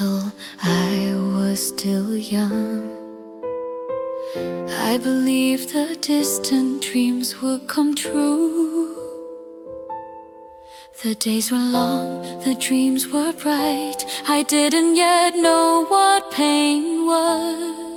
I was still young. I believed the distant dreams would come true. The days were long, the dreams were bright. I didn't yet know what pain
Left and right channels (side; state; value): both; identical; correlation 1.00